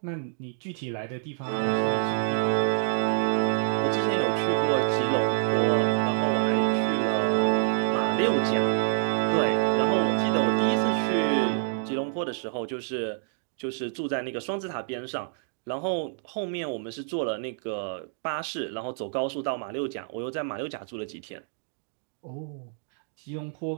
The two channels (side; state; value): left; silent; digital silence